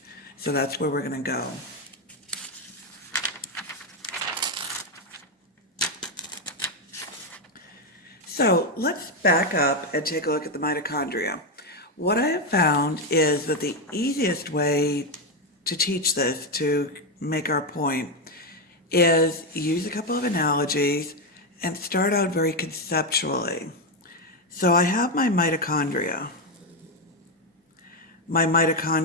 So that's where we're going to go. So let's back up and take a look at the mitochondria. What I have found is that the easiest way to teach this, to make our point, is use a couple of analogies and start out very conceptually. So I have my mitochondria. My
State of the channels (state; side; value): normal; both; correlation 0.07